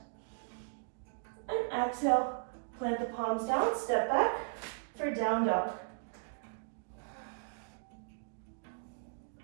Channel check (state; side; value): silent; left; digital silence